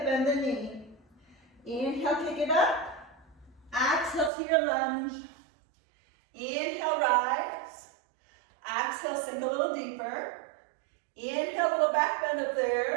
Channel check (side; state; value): left; drops out; at 4.3 s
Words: bend the knee. Inhale, kick it up. Exhale to your lunge. Inhale, rise. Exhale, sink a little deeper. Inhale, little back bend up